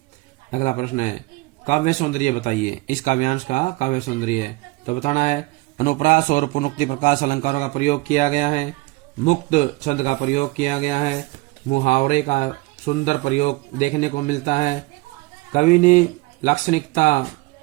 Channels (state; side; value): quieter; left; 23.1 dB